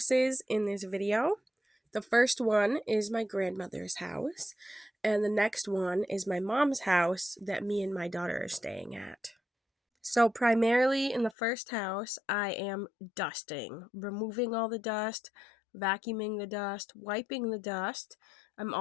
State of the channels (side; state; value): right; drops out; at 11.4 s